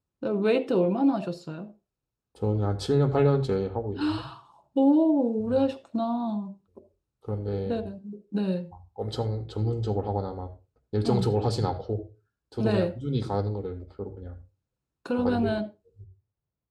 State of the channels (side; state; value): both; identical; correlation 1.00